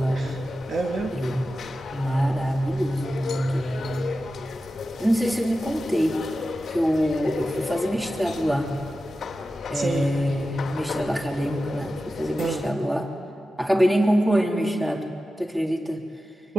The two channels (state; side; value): normal; both; correlation 0.93